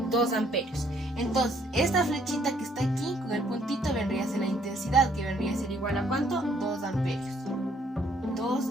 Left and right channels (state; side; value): normal; both; correlation 0.66